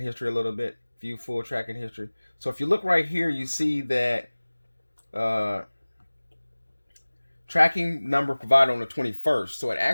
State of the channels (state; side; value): inverted; both; correlation -1.00